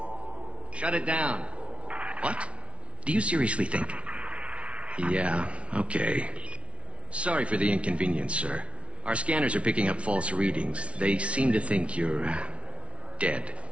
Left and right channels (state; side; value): late; left; 0.061 ms